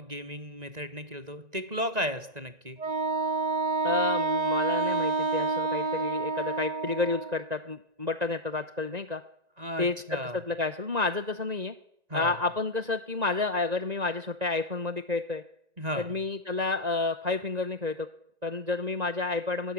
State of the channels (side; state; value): left; late; 1.9 ms